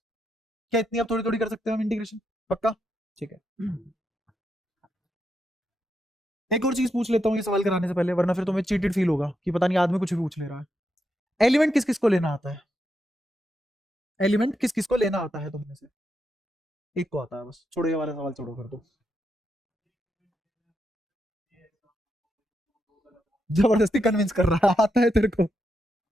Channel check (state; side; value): normal; both; correlation 0.83